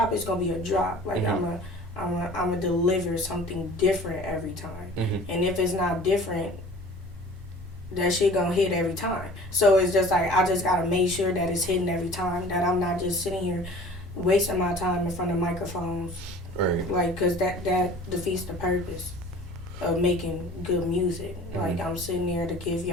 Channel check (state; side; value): normal; both; correlation 0.45